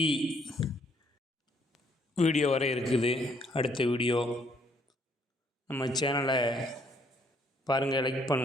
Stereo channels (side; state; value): both; normal; correlation 0.67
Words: வீடியோ வரை இருக்குது. அடுத்த வீடியோ நம்ம சேனலை பாருங்கள், லைக்